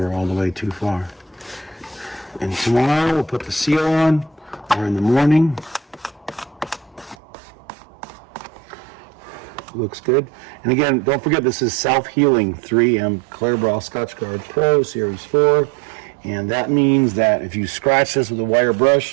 all the way too far. And tomorrow we'll put the seal on, or in the morning. Looks good. And again, don't forget, this is self-healing 3M Clear Scotch Guard Pro Series 4. And that means that if you scratch this with a wire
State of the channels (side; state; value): left; drops out; at 7.2 s